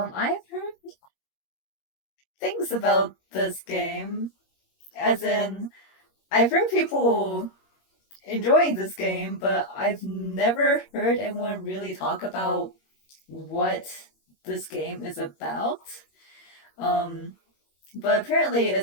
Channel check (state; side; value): late; right; 21 ms